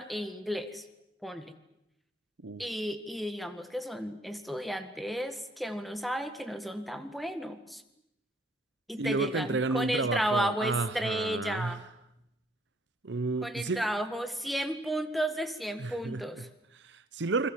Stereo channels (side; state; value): both; normal; correlation 0.64